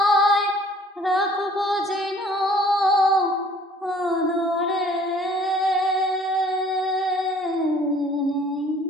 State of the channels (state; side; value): normal; both; correlation 0.54